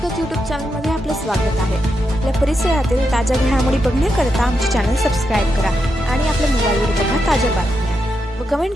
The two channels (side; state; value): both; normal; correlation 0.84